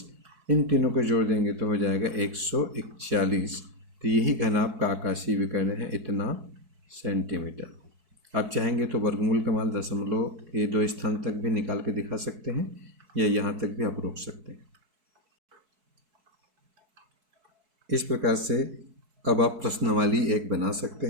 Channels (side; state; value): left; late; 4.6 ms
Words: इन तीनों को जोड़ देंगे तो हो जाएगा 141। तो यही घनाभ का आकाशीय विकर्ण है, इतना सेंटीमीटर। आप चाहेंगे तो वर्गमूल का मान दशमलव के 2 स्थान तक भी निकाल के दिखा सकते हैं, या यहाँ तक भी आप रोक सकते हैं। इस प्रकार से अब आप प्रश्नावली 1 बना सकते